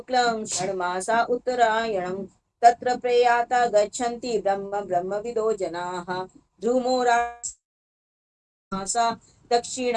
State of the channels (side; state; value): both; identical; correlation 1.00